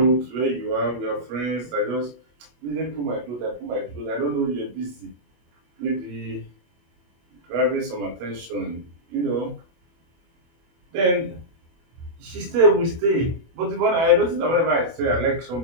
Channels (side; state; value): left; late; 24 ms